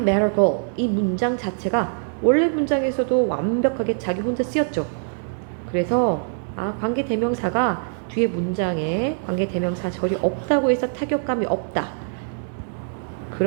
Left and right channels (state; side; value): silent; left; digital silence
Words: a girl. 이 문장 자체가 원래 문장에서도 완벽하게 자기 혼자 쓰였죠. 그래서 관계대명사가 뒤에 문장에 관계대명사 절이 없다고 해서 타격감이 없다.